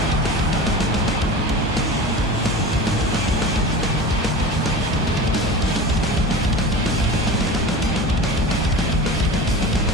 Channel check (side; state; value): both; normal; correlation 0.32